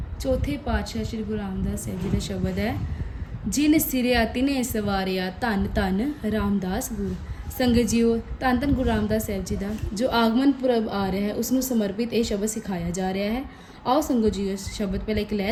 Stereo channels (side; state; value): both; identical; correlation 1.00